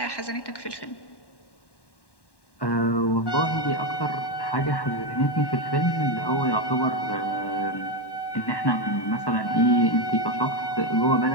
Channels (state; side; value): late; right; 1.1 ms